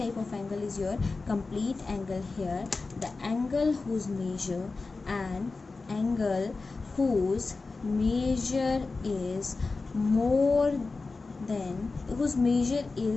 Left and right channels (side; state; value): right; quieter; 3.9 dB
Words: of angle is your complete angle here. The angle whose measure is more than, whose measure